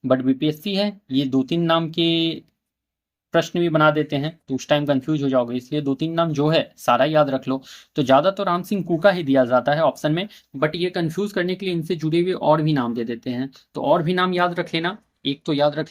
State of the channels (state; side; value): identical; both; correlation 1.00